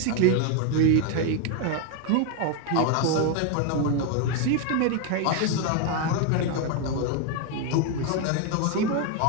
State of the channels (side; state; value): both; different; correlation 0.01